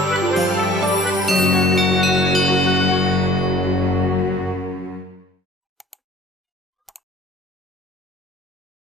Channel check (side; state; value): both; normal; correlation 0.52